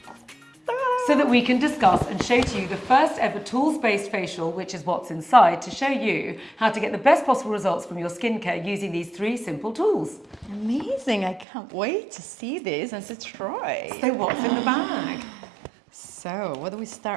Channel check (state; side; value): drops out; left; at 11.5 s